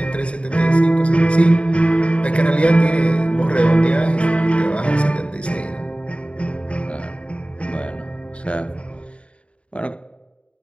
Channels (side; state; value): right; late; 0.060 ms